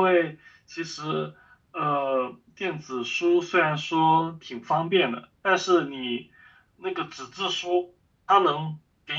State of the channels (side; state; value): both; identical; correlation 1.00